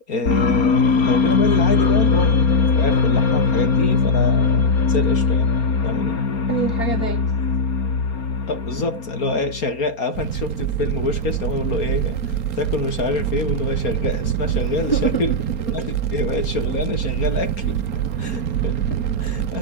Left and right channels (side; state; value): right; late; 4.3 ms